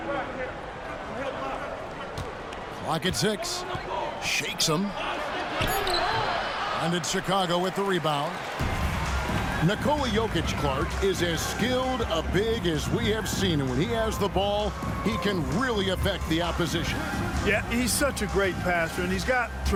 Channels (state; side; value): identical; both; correlation 1.00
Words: Clock at 6. Shakes him. And it's Chicago with the rebound. Nikola Jokic, Clark, is as skilled a big as we have seen. And when he has the ball, he can really affect the opposition. Yeah, he's such a great passer, and he's got